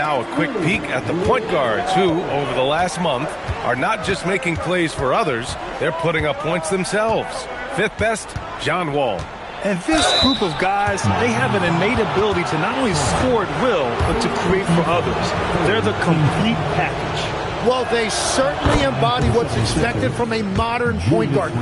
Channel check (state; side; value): identical; both; correlation 1.00